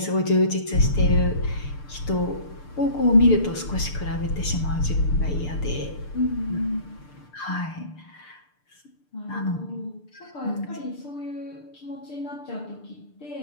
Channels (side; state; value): right; late; 6.7 ms